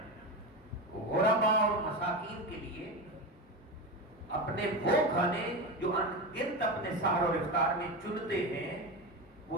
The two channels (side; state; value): both; normal; correlation 0.20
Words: غرباء اور مساکین کے لیے اپنے وہ کھانے جو انگنت اپنے سحر اور افطار میں چنتے ہیں،